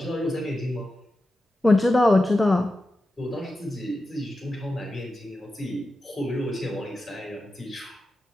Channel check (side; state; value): both; normal; correlation 0.91